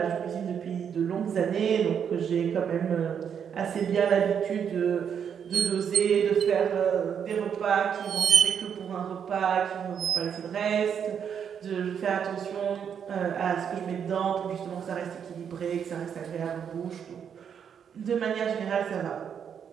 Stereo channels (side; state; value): left; quieter; 7.8 dB